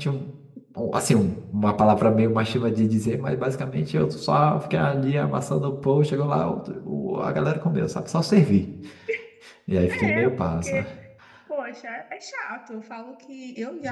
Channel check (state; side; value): identical; both; correlation 1.00